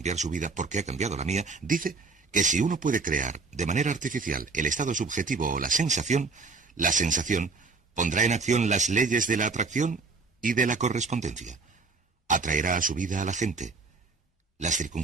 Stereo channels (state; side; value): quieter; left; 4.2 dB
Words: su vida porque ha cambiado la mía, dice que si uno puede crear de manera artificial el estado subjetivo o la sensación pondrá en acción las leyes de la atracción y de la correspondencia. Atraerá a su vida a la gente, las